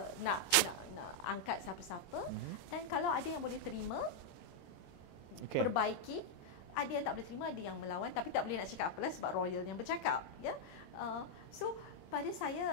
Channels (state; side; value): late; right; 23 ms